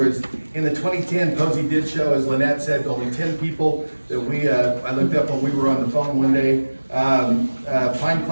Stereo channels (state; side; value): inverted; both; correlation -1.00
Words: in the 2010, Posey did show, as Lynette said, only 10 people that I looked up when we were on the phone one day. Pine